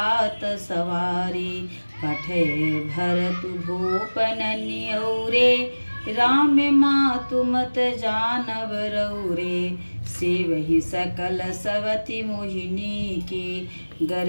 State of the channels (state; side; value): inverted; both; correlation -1.00